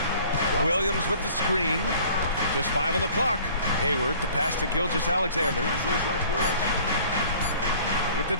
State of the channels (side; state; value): both; inverted; correlation -0.50